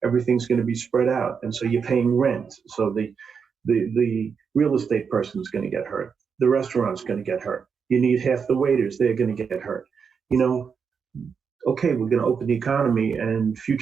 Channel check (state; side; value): quieter; left; 6.2 dB